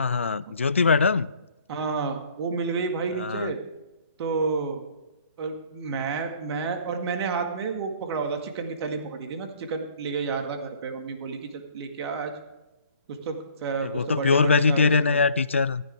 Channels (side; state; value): both; inverted; correlation -0.56